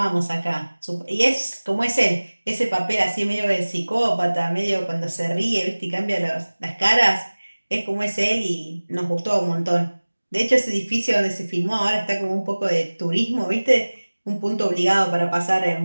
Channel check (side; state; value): both; inverted; correlation -1.00